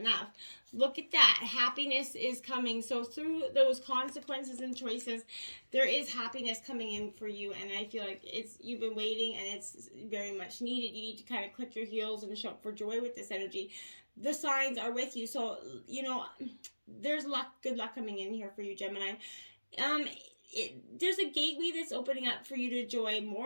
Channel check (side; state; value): both; inverted; correlation -1.00